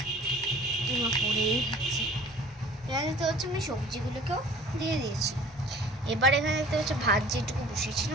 এখানে দেখতে হচ্ছে আমি সবজিগুলোকেও দিয়ে দিয়েছি। এবার এখানে দেখতে হচ্ছে ভাত যেটুকু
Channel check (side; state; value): both; normal; correlation 0.48